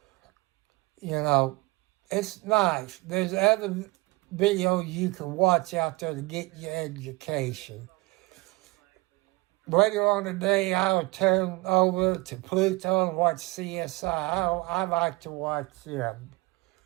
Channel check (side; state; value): left; quieter; 23.8 dB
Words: You know, it's nice. There's other videos you can watch out there to get your education. Later on today, I will turn over to Pluto and watch CSI. I like to watch them.